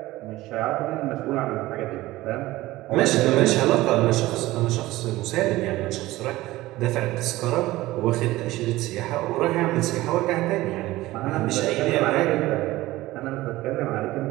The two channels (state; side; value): quieter; left; 17.7 dB